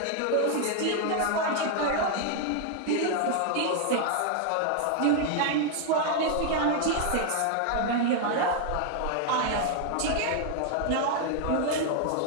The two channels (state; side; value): different; both; correlation 0.00